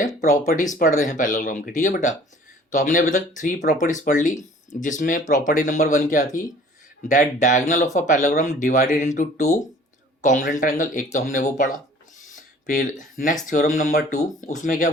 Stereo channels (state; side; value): normal; both; correlation 0.51